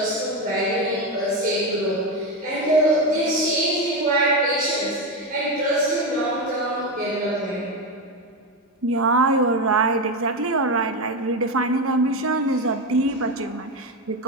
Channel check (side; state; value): both; normal; correlation 0.14